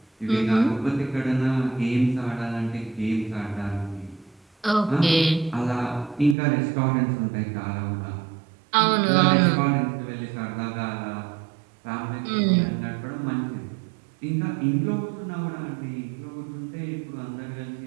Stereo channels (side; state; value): left; drops out; at 6.4 s